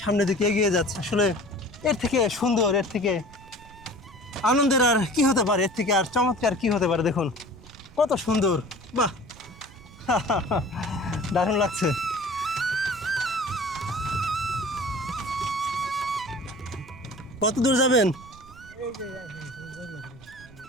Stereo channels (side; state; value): right; noise; rumble, 21 dB below the sound